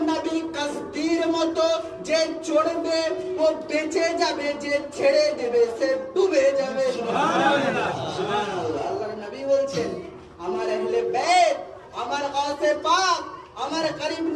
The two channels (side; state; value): both; identical; correlation 1.00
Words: নবী কাস্তির মতো, যে চড়বে ও বেঁচে যাবে, যে ছেড়ে দেবে সে ডুবে যাবে। সুবহানাল্লাহ, সুবহানাল্লাহ। আল্লাহর নবী বলছেন, আমার আহলে বাইত, আমার গাউসে পাক, আমার করিম